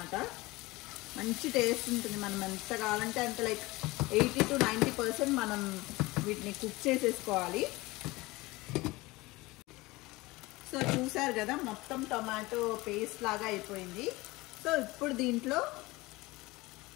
మంచి టేస్ట్ ఉంటుంది. మనం ఎంత కావాలంటే అంత లైక్ 80 to 90% మనం వీటిని కుక్ చేసేసుకోవాలి. సో చూసారు కదా మొత్తం టొమాటో పేస్ట్ లాగా అయిపోయింది. సో ఇప్పుడు దీంట్లో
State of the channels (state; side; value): quieter; right; 21.3 dB